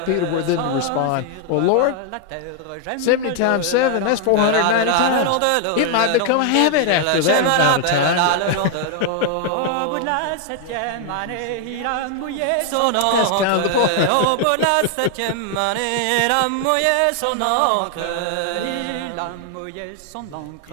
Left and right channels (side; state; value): both; different; correlation 0.00